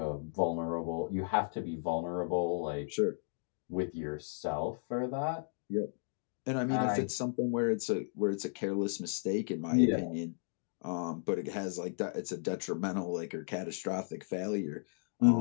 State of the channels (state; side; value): silent; right; digital silence